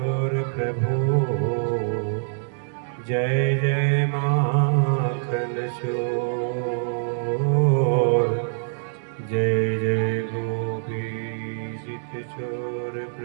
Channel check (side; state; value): left; silent; 62 dB below the other